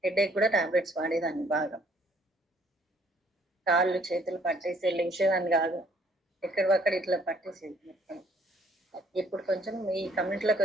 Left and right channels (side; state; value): both; normal; correlation 0.63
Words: హెడేక్ కూడా టాబ్లెట్స్ వాడేదాన్ని బాగా. కాళ్ళు చేతులు పట్టేసి లేచేదాన్ని కాదు, ఎక్కడివక్కడ ఇట్లా పట్టేసేది మొత్తం. ఇప్పుడు కొంచెం ఈ కమ్యూనిటీలోకి